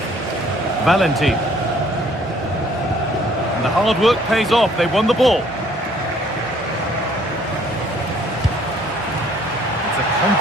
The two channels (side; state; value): both; normal; correlation 0.60